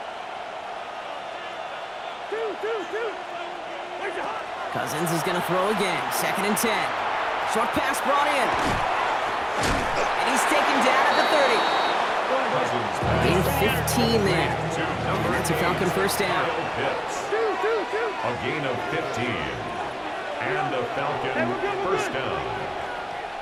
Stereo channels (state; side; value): identical; both; correlation 1.00